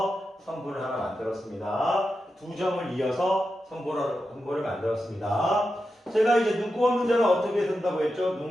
선분을 하나 만들었습니다. 두 점을 이어서 선분을 만들었습니다. 제가 이제 눈곱 없는 자는 어떻게 쓴다고 했죠?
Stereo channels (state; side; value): normal; both; correlation 0.89